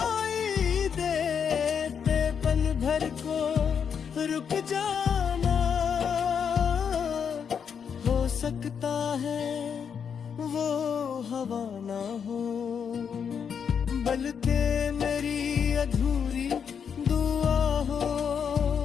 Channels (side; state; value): right; quieter; 7.2 dB